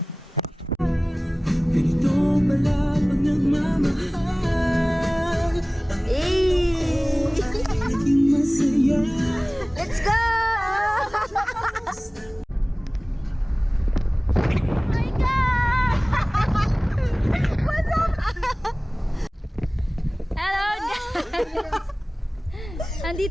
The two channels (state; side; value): normal; both; correlation 0.98